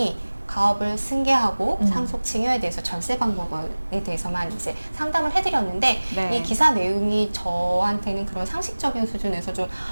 가업을 승계하고 상속 증여에 대해서 절세 방법에 대해서만 이제 상담을 해드렸는데 네. 이 기사 내용이 저한테는 그런 상식적인 수준에서 좀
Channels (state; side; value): inverted; both; correlation -1.00